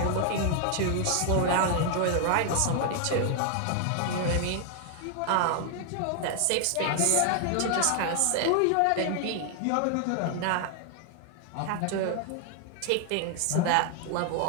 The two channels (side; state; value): both; different; correlation 0.00